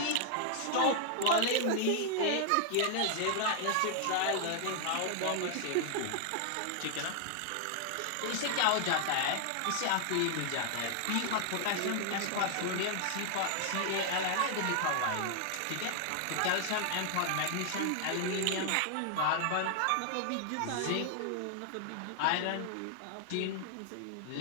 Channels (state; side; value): different; both; correlation 0.00